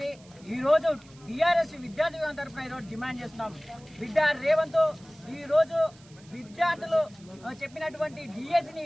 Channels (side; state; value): right; noise; hiss, 26 dB below the sound